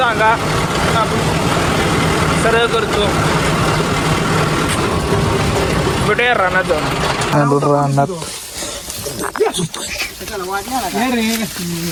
आपण सरळ करतो. भेटूया रानात रानात.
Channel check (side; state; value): both; identical; correlation 1.00